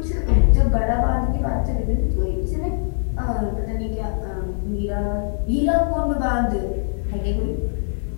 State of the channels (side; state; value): right; silent; digital silence